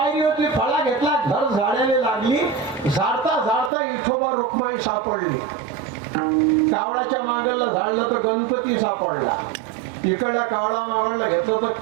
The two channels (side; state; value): left; drops out; at 3.7 s